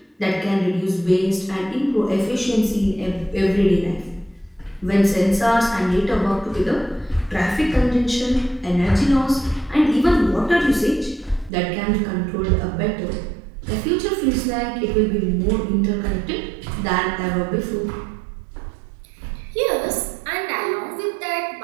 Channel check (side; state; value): left; drops out; at 11.5 s